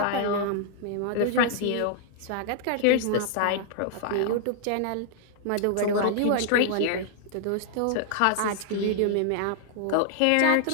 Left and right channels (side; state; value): both; different; correlation 0.00